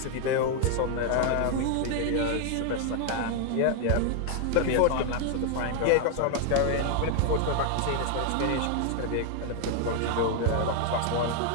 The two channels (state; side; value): different; both; correlation 0.00